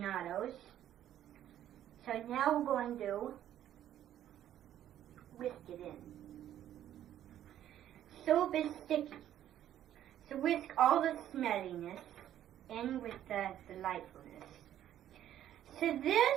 So now we're going to whisk it in. Syrup is sticky, so whisk all the smelliness in with the delightfulness. So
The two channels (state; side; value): quieter; left; 11.5 dB